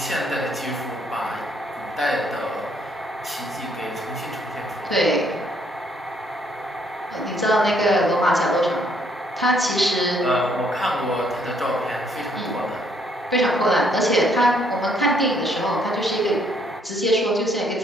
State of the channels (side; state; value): both; normal; correlation 0.68